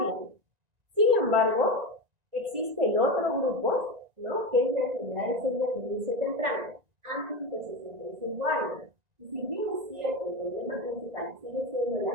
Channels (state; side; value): late; left; 1.9 ms